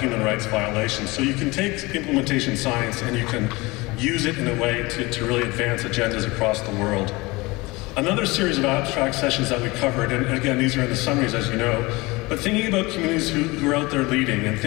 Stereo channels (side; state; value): right; quieter; 23.1 dB